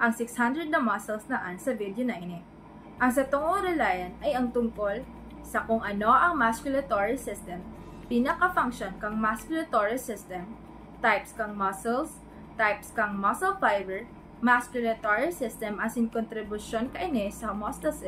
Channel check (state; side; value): identical; both; correlation 1.00